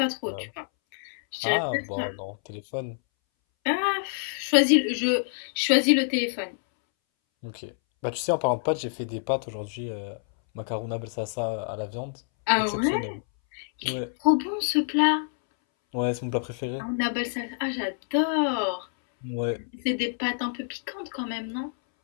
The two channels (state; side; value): silent; right; 60 dB below the other